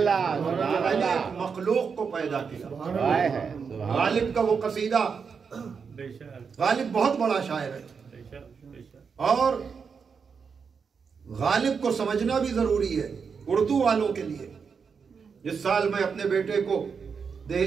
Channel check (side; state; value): left; quieter; 5.9 dB